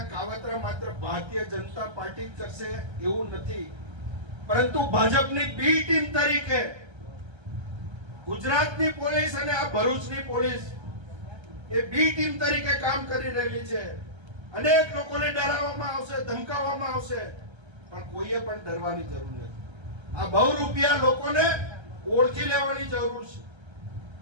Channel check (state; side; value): late; left; 1.3 ms